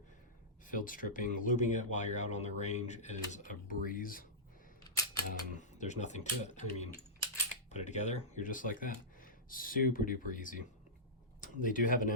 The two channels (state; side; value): normal; both; correlation -0.14